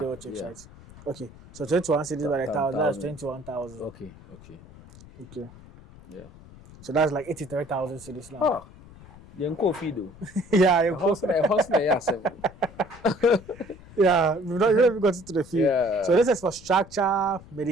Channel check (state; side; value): noise; left; rumble, 20 dB below the sound